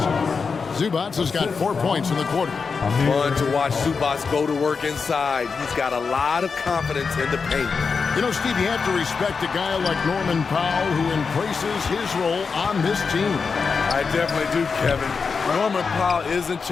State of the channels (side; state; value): right; quieter; 5.2 dB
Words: Zubac has got 4 points in the quarter. Fun to watch Zubac go to work inside. He's got a lot of confidence in the paint. You know, Steve, you have to respect a guy like Norman Powell who embraces his role on this team. I definitely do, Kevin. Norman Powell isn't